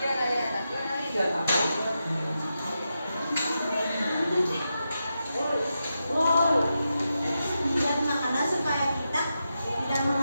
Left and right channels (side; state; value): both; inverted; correlation -0.88